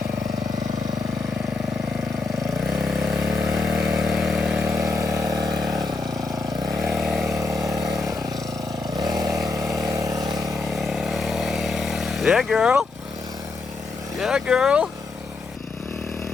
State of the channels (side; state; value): right; quieter; 3.9 dB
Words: Yeah, girl. Yeah, girl. All